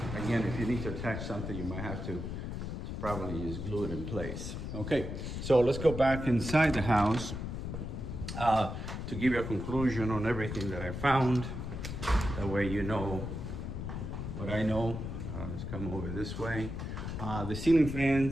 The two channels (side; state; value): left; noise; rumble, 5 dB below the sound